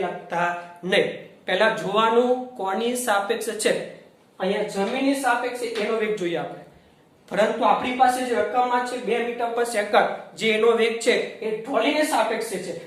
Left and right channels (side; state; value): both; identical; correlation 1.00